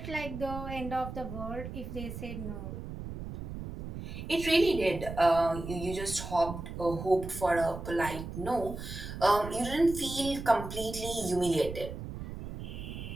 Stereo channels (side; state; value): right; noise; rumble, 8 dB below the sound